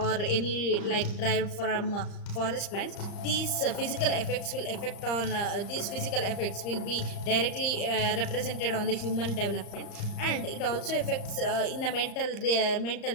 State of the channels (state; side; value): late; right; 34 ms